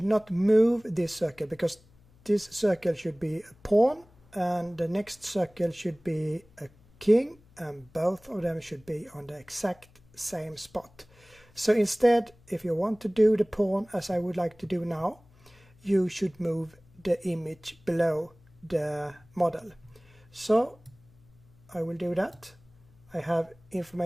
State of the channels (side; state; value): left; noise; hum, 29 dB below the sound